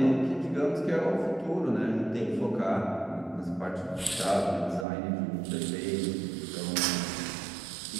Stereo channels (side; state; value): left; drops out; at 4.9 s